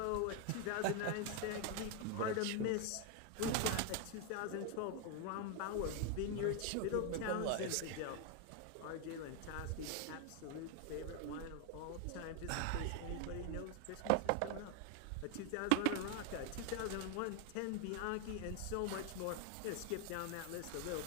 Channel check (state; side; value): different; both; correlation 0.01